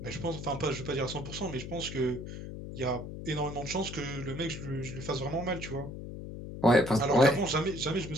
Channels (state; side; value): noise; left; hum, 9 dB below the sound